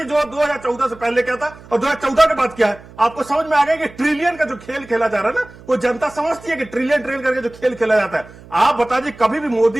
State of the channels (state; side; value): noise; right; hum, 21 dB below the sound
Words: जो 2014 से पहले क्या था और 2014 के बाद क्या है। आपको समझ में आ गया कि ट्रिलियन का जो खेल खेला जा रहा है ना, वो जनता समझती है कि ट्रिलियन करके जो खेल खेला जाता है। आप बता दीजिए, कभी भी